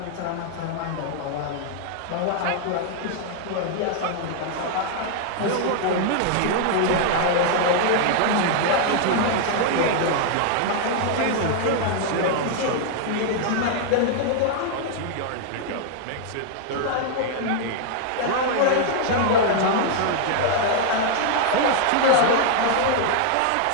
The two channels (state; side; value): different; both; correlation 0.00